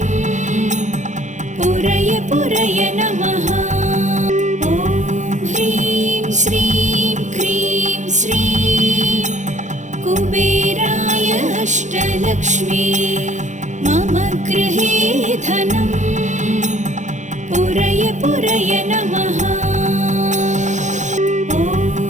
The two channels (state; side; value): late; left; 0.35 ms